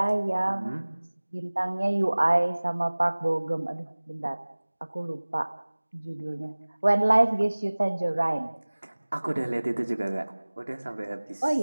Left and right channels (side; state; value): both; inverted; correlation -1.00